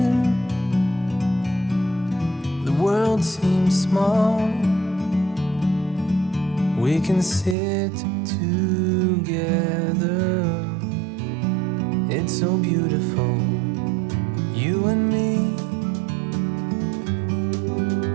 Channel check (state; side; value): drops out; left; at 7.6 s